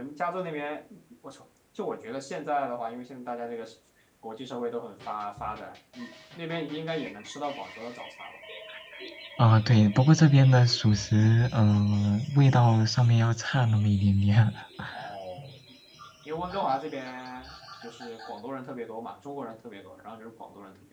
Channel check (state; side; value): identical; both; correlation 1.00